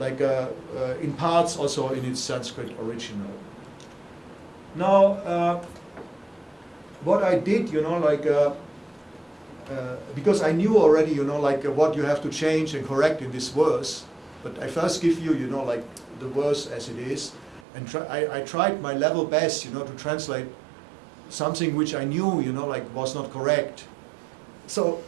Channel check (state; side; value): drops out; left; at 17.7 s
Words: in parts also in its Sanskrit original. Now, what I did, you know, like, because I knew already, you know, like what you have to change and correct in this verse, but I first give you, you know, like the verse as it is, and I tried my level best, you know, to translate something which I knew, you know, like was not correct. So